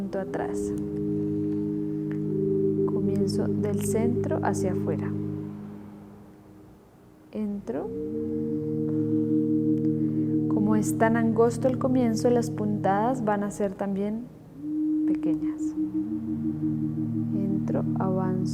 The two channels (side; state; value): both; identical; correlation 1.00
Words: atrás. Comienzo del centro hacia afuera. Entro. Como es tan angosto el comienzo, las puntadas van a ser también pequeñas. Entro,